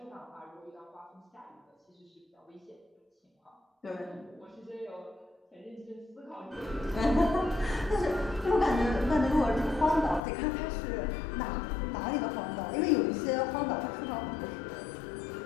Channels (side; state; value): right; drops out; at 10.2 s